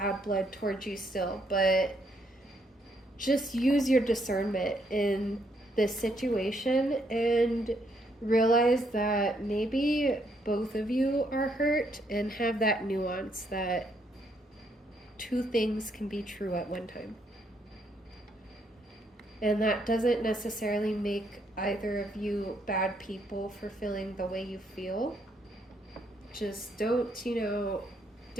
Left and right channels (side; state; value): both; normal; correlation 0.73